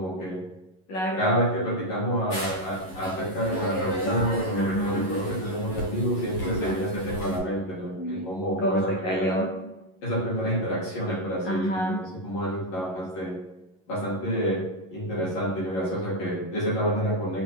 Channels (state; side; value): late; right; 11 ms